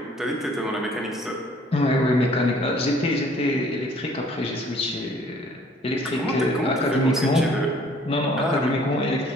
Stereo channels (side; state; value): both; normal; correlation 0.57